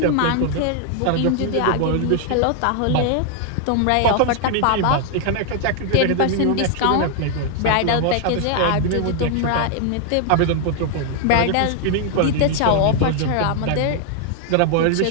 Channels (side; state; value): both; different; correlation 0.00